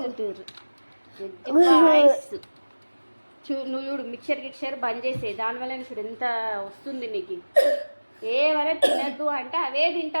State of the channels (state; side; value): inverted; both; correlation -1.00